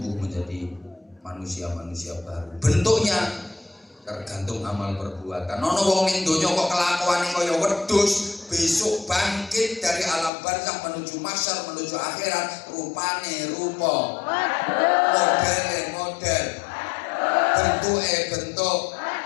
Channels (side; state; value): right; drops out; at 10.3 s